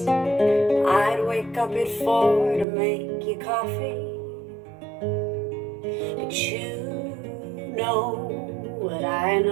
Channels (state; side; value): drops out; left; at 2.7 s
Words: I'd wake up at 4 to make you coffee, but you know what I